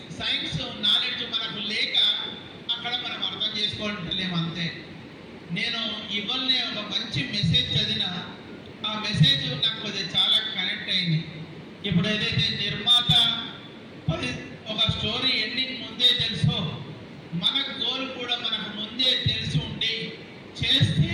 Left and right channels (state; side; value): identical; both; correlation 1.00